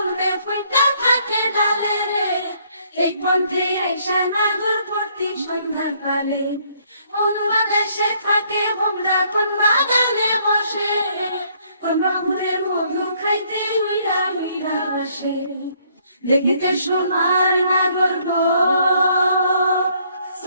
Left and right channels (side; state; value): both; inverted; correlation -0.66